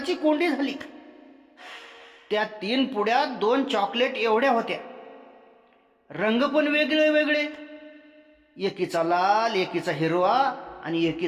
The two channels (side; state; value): both; identical; correlation 1.00